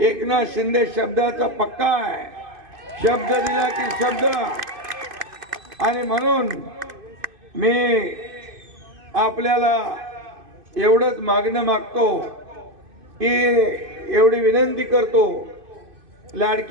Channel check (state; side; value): late; left; 2.5 ms